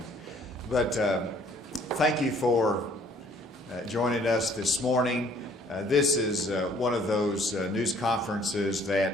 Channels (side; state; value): both; normal; correlation 0.60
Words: But thank you for joining us this morning. This is one of those news conferences